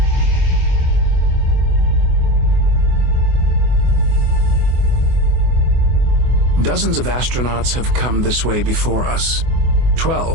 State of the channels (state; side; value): late; left; 24 ms